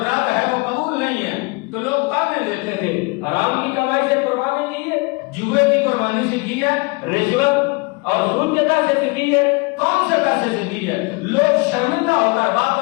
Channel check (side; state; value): right; quieter; 27.5 dB